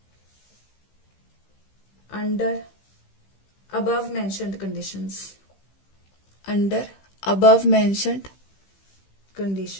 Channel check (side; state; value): right; late; 15 ms